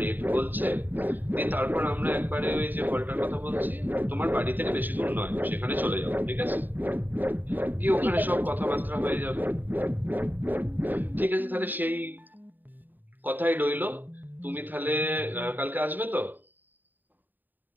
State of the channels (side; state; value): left; late; 0.089 ms